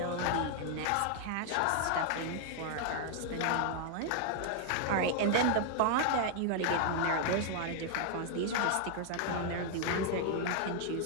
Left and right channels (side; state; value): both; different; correlation 0.00